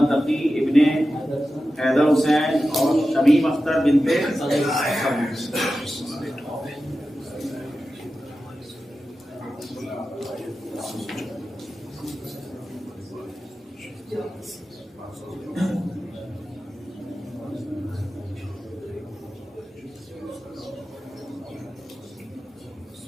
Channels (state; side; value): normal; both; correlation 0.93